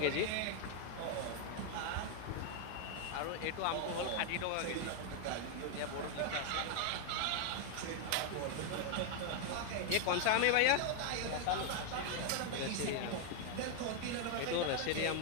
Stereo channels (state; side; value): different; both; correlation 0.00